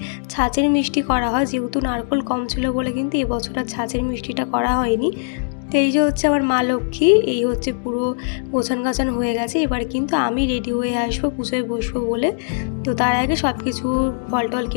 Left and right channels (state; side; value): silent; right; digital silence